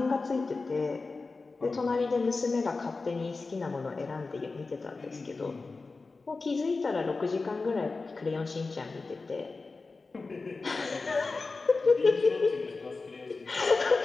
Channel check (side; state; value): right; quieter; 3.9 dB